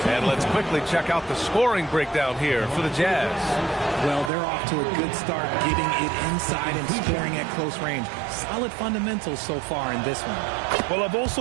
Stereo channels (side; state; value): left; drops out; at 4.3 s